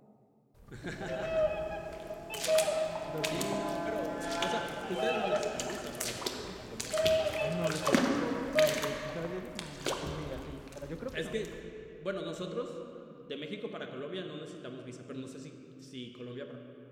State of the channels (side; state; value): both; identical; correlation 1.00